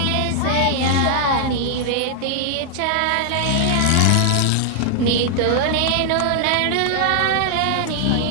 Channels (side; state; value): both; different; correlation -0.01